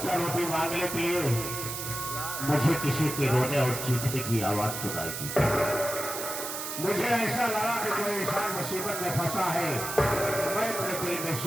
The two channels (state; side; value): noise; right; hiss, 5 dB below the sound